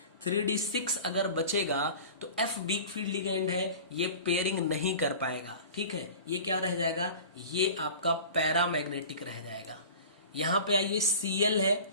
3d6 अगर बचेगा तो F वीक फील्ड लिगेंड है, ये पेयरिंग नहीं कर पाएगा। ठीक है, ये क्या रह जाएगा, ये आपका पैरामैग्नेटिक रह जाएगा। यहां पे आइए Cl है,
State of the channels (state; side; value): inverted; both; correlation -0.40